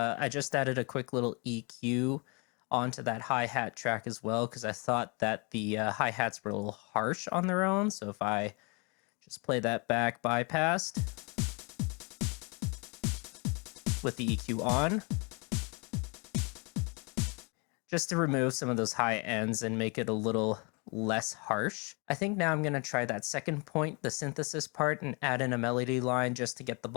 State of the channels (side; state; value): right; quieter; 31.8 dB